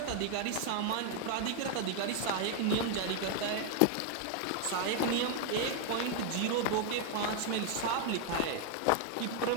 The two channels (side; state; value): both; different; correlation 0.00